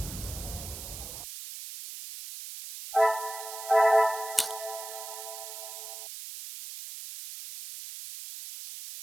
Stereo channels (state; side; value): noise; right; hiss, 10 dB below the sound